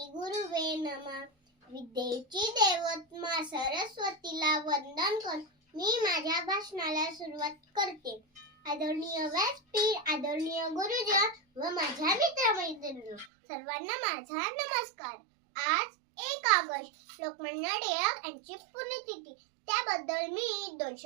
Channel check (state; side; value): drops out; left; at 13.3 s